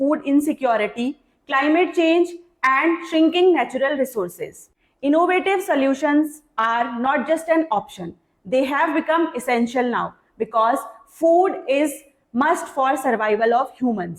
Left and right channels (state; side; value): identical; both; correlation 1.00